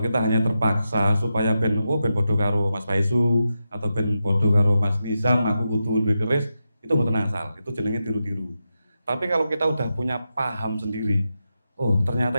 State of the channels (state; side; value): inverted; both; correlation -0.88